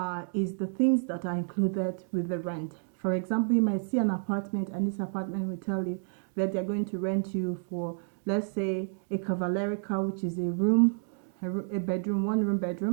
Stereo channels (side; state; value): left; silent; digital silence